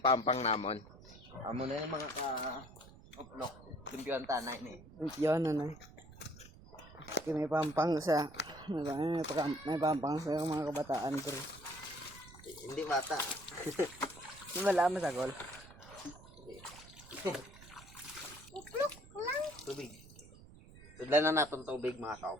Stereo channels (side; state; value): right; noise; rumble, 19 dB below the sound